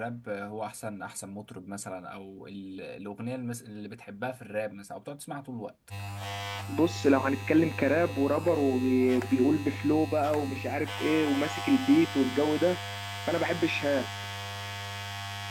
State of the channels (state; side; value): identical; both; correlation 1.00